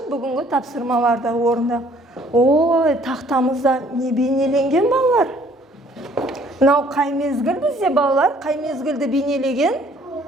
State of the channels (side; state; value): both; normal; correlation 0.59